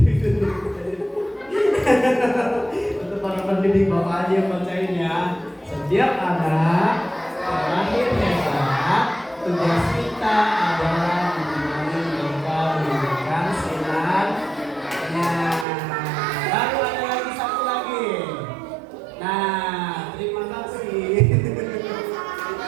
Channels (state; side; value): drops out; left; at 15.7 s